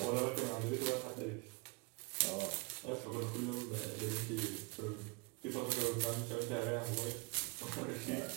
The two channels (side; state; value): left; quieter; 29.4 dB